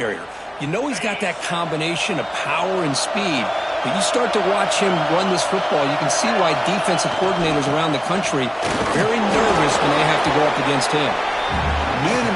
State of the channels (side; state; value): both; identical; correlation 1.00